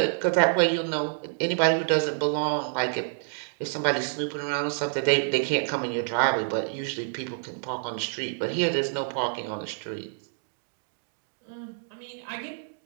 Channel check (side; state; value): left; silent; digital silence